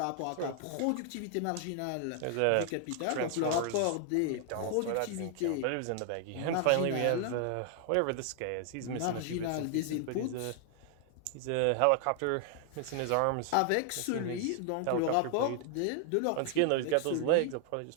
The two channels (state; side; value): different; both; correlation 0.00